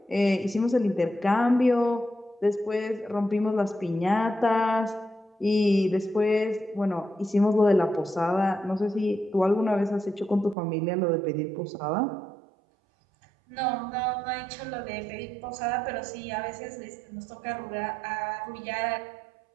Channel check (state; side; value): drops out; left; at 10.6 s